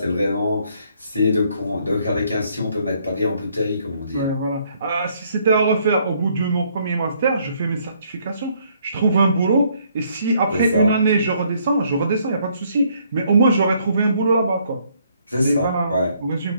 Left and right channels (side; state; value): both; inverted; correlation -0.67